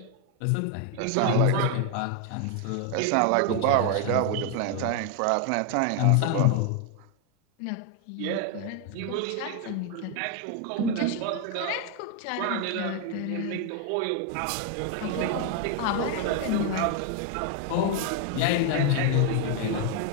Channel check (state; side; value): different; both; correlation 0.01